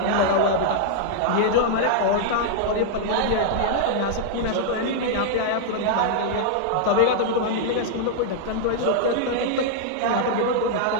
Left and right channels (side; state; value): both; different; correlation -0.01